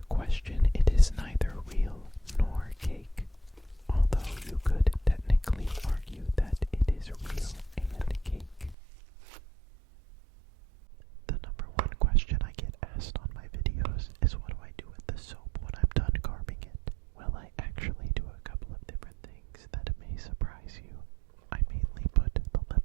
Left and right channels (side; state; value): left; drops out; at 8.8 s